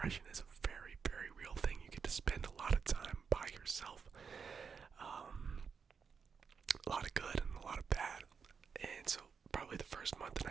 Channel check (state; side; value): quieter; left; 6.0 dB